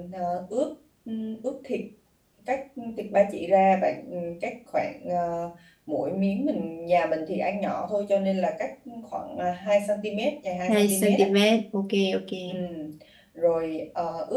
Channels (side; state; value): both; identical; correlation 1.00